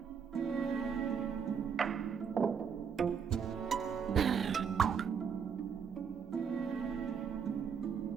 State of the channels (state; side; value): quieter; left; 6.8 dB